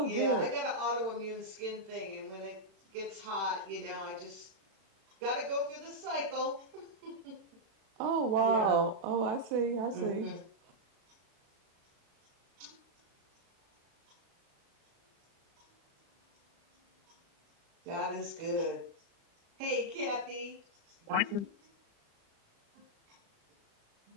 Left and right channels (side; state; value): left; late; 36 ms